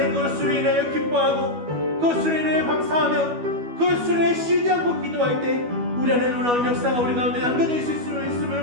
그것으로 인하여 기뻐하고 그것으로 인하여 감사하며 그것으로 인하여 쉬지 않고 기도할 때 우리 안에 놀라운 역사가 우리 가운데 남겨져 있을 수 있음을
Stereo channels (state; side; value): late; left; 12 ms